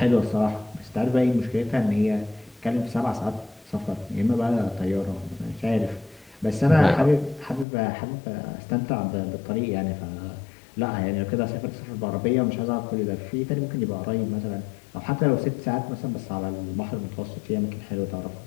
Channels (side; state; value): right; drops out; at 7.7 s